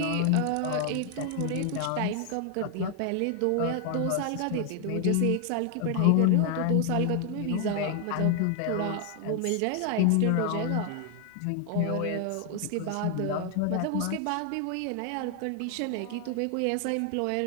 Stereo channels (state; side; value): different; both; correlation 0.00